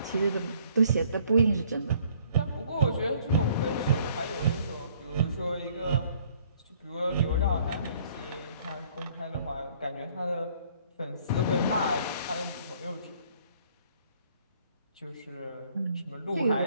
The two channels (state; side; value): inverted; both; correlation -0.60